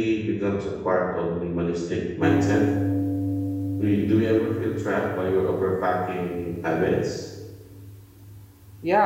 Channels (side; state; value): both; identical; correlation 1.00